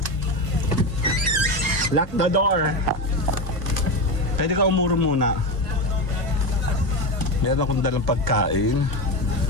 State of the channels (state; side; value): late; left; 1.5 ms